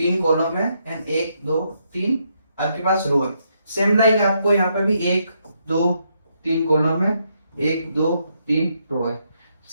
कॉलम है एंड एक दो तीन आपके पास रो है। सेम लाइक आपको यहाँ पे भी एक दो तीन कॉलम है, एक दो तीन रो है।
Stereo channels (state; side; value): inverted; both; correlation -0.77